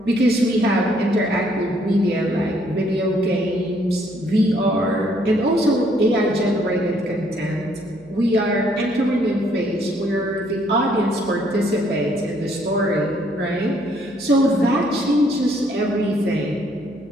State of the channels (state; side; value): noise; left; hum, 27 dB below the sound